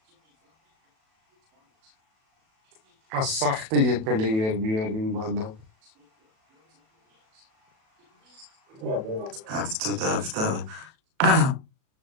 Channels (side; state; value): left; late; 37 ms